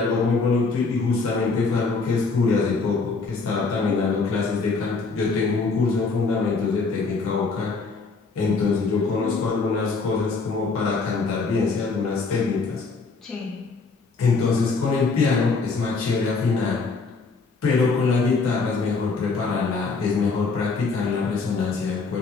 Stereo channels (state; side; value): quieter; right; 4.3 dB